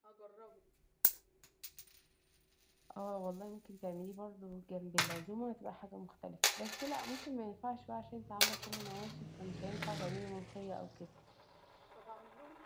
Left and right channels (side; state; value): both; identical; correlation 1.00